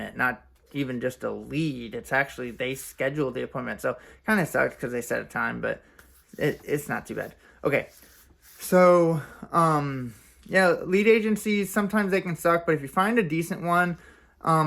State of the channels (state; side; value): identical; both; correlation 1.00